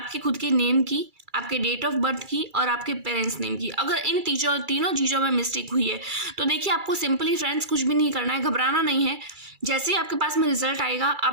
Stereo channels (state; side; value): late; left; 2.3 ms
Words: खुद के नेम की, आपके डेट ऑफ बर्थ की और आपके पेरेंट्स नेम की, अगर इन तीनों चीज़ों में मिस्टेक हुई है तो देखिए आपको सिंपली फ्रेंड्स कुछ भी नहीं करना है, घबराना नहीं है। जैसे ही आपके पास में रिजल्ट आएगा,